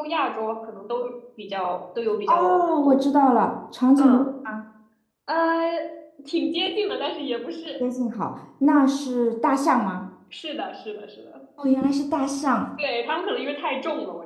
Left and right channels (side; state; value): both; identical; correlation 1.00